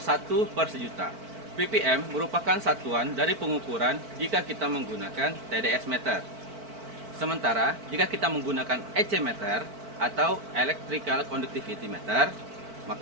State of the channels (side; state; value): left; late; 4.5 ms